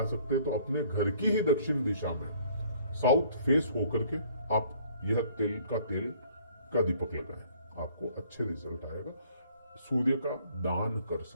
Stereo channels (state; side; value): inverted; both; correlation -0.58